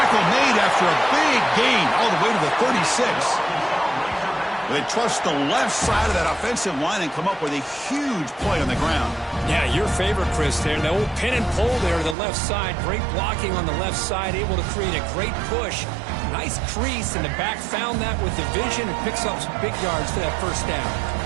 made after a big gain all the way to the 36. They trust the left side of that offensive line and come up with a huge play on the ground. Yeah, your favorite, Chris, there. The old pin and pull there to the left side. Great blocking on the left side, able to create a great push. Nice crease, and the back found that with the vision and picks up some big yards for that first down.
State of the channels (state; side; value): drops out; left; at 12.2 s